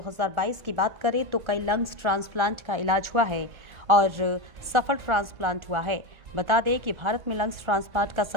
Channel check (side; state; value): left; late; 1.4 ms